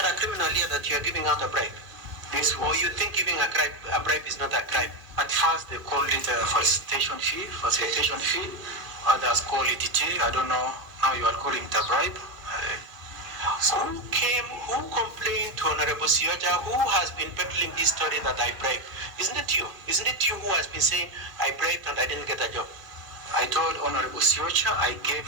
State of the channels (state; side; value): late; left; 2.1 ms